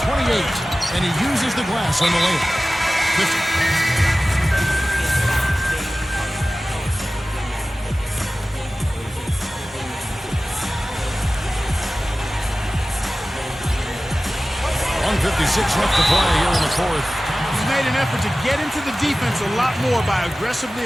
and he uses the glass on the layup. 50. .56 left to play here in the 4th. He's made an effort to get into the defense a lot more by aggressively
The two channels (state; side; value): normal; both; correlation 0.96